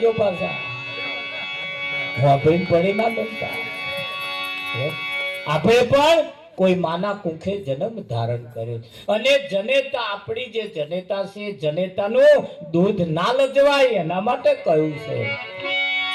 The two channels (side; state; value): both; identical; correlation 1.00